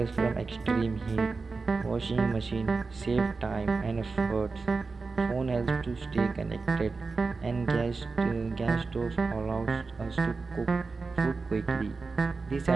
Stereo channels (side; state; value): left; quieter; 4.2 dB